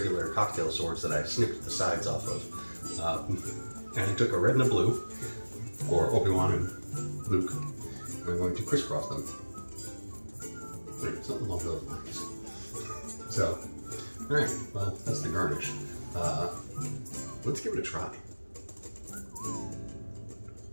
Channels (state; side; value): inverted; both; correlation -1.00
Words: cocktail swords that I snipped the sides off of. And I took a red and a blue, or Obi-Wan and Luke, and I'm going to crisscross them. Something along those lines. So, alright, well, that's the garnish. Let's give it a try.